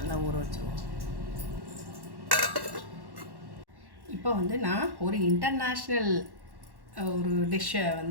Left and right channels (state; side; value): late; left; 1.1 ms